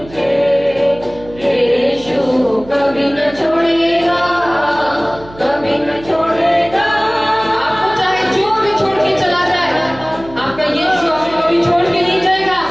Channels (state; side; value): noise; right; hum, 19 dB below the sound